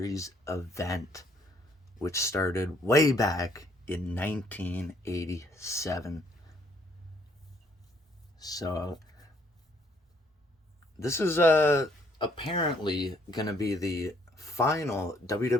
event, which started way back in 1987. So this is apparently going to be the final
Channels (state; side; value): normal; both; correlation 0.66